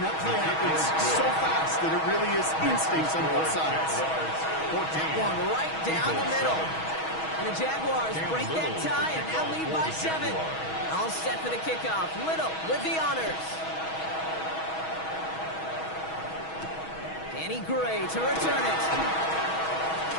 that play happens so fast that it really is instincts on both sides. That one right down the middle. And the Jaguars break that tie and now lead by 7. All set for the kickoff. Little with the honors. Danny Gray to return it.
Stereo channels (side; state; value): right; late; 6.3 ms